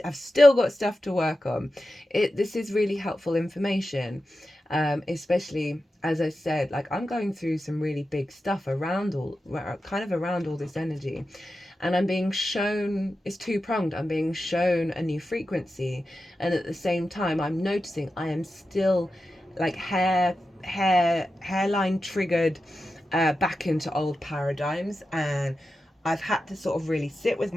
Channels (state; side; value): normal; both; correlation 0.91